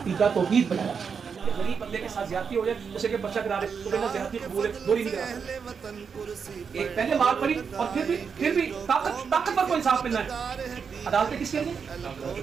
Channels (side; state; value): left; quieter; 6.2 dB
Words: توحید بنایا. غریب بندے کے ساتھ زیادتی ہو جائے، اسے کہ بچہ کرا رہے تو کہنا زیادتی قبول ہے، دوری نہیں کرا سکتے. ایک پہلے مار پڑی اور پھر بھی طاقتور کو انصاف ملنا ہے. عدالتیں کس کے لیے؟